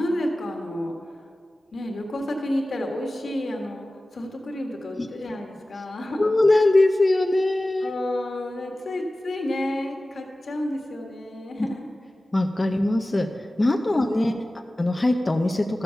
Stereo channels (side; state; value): both; normal; correlation 0.96